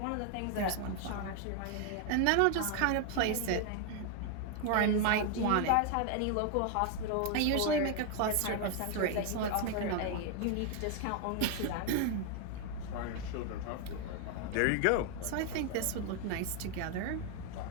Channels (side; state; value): both; different; correlation 0.01